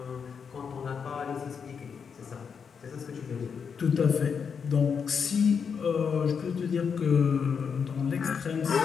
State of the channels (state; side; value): quieter; right; 6.4 dB